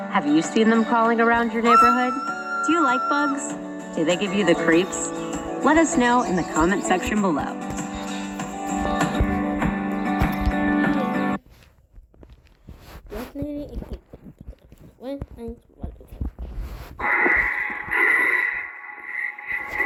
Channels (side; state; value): both; identical; correlation 1.00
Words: Have you seen them crawling around your neighborhood? Do you like bugs? Do they give you the creeps? Let us know in the comment section below.